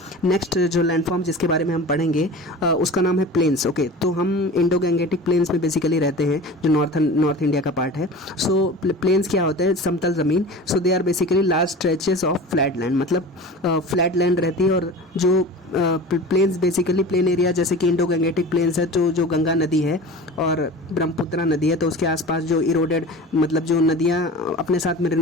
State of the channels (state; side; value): normal; both; correlation 0.36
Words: नेक्स्ट जो लैंडफॉर्म जिसके बारे में हम पढ़ेंगे उसका नाम है प्लेन्स। ओके, तो हम इंडो गैंगेटिक प्लेन्स में बेसिकली रहते हैं, जो नॉर्थ इंडिया का पार्ट है। सो प्लेन्स क्या होता है, समतल ज़मीन। So they are basically large stretches of flat land, मतलब फ्लैट लैंड रहती है। और जो प्लेन्स बेसिकली प्लेन एरिया, जैसे कि इंडो गैंगेटिक प्लेन्स है, तो जो गंगा नदी है और ब्रह्मपुत्रा नदी है, तो उसके आसपास जो इरोडेड, मतलब जो नदियाँ अपने साथ